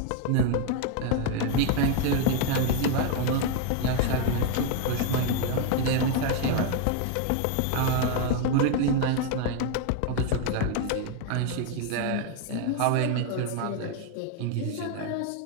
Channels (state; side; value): different; both; correlation 0.01